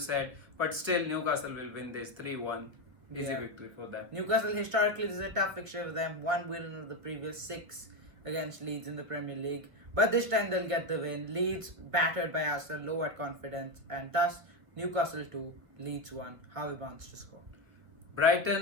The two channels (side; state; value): left; late; 1.7 ms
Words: But still, Newcastle will win this 3-1. Easy victory for them. Newcastle historically, this is a tough fixture for them. 1 win of the previous 6 against Leeds in the Premier League. But this time they'll get the win. Leeds battered by Arsenal, low at confidence, and thus Newcastle 2, Leeds 1. Harvey Barnes to score.